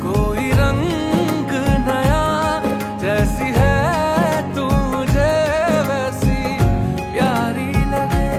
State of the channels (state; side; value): identical; both; correlation 1.00